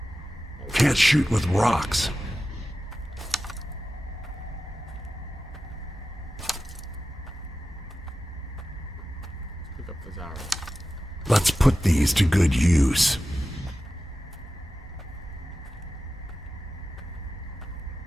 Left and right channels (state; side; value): normal; both; correlation 0.93